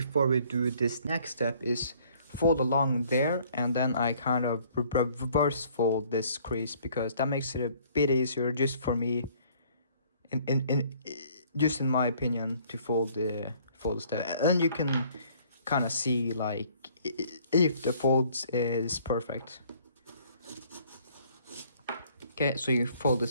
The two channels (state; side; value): inverted; both; correlation -0.59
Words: we do this next step is fold along there, and then I kind of reverse fold this crease, because that makes it a bit easier just for me, just in my opinion, to fold the step. And you can kind of see like if the folds is perfect. Okay, so you fold